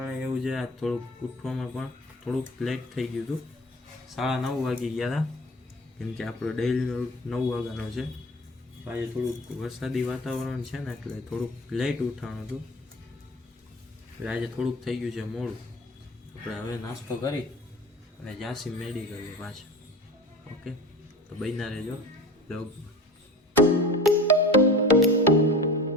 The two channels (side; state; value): both; normal; correlation 0.37